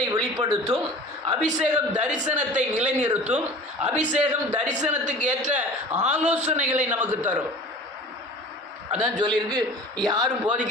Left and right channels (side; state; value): both; normal; correlation 0.40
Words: வெளிப்படுத்தும். அபிஷேகம் தரிசனத்தை நிலைநிறுத்தும். அபிஷேகம் தரிசனத்துக்கு ஏற்ற ஆலோசனைகளை நமக்கு தரும். அதான் சொல்லியிருக்கு, யாரும்